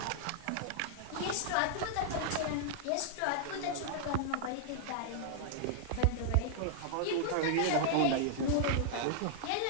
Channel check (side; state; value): both; different; correlation -0.01